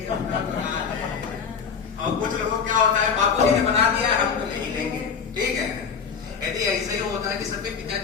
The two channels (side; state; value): right; quieter; 6.3 dB